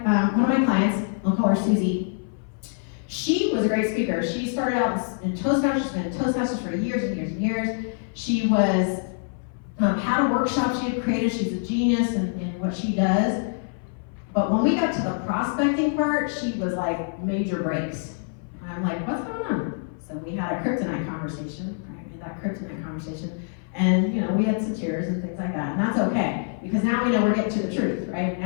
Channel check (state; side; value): silent; right; 58 dB below the other